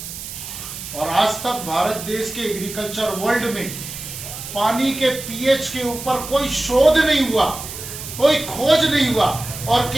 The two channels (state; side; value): noise; right; hiss, 10 dB below the sound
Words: और आज तक भारत देश के एग्रीकल्चर वर्ल्ड में पानी के pH के ऊपर कोई शोध नहीं हुआ, कोई खोज नहीं हुआ, और